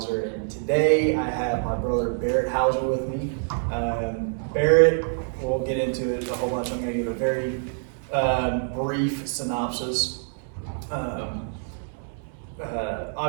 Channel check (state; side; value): silent; left; 61 dB below the other